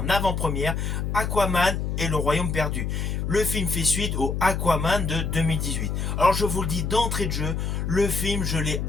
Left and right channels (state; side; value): noise; left; hum, 1 dB below the sound